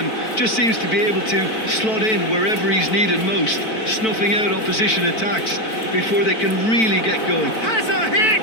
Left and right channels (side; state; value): right; late; 4.5 ms